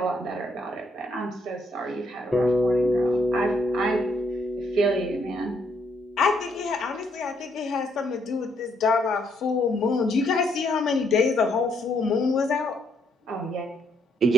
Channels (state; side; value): normal; both; correlation 0.73